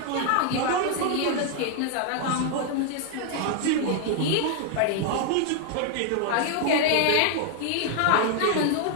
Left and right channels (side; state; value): both; different; correlation 0.00